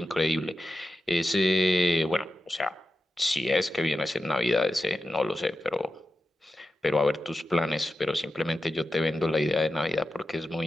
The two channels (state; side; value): normal; both; correlation 0.91